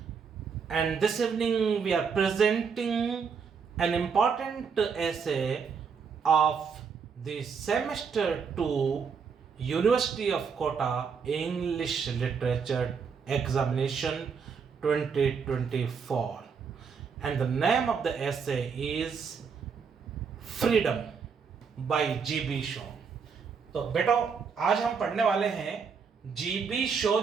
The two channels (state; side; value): quieter; left; 6.0 dB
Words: And this evening we are presenting an important essay of the semester 2 University of Kota English Literature Examination 2024. And the name of the essay is Freedom by G.B. Shaw. तो बेटो आज हम पढ़ने वाले हैं GB Shaw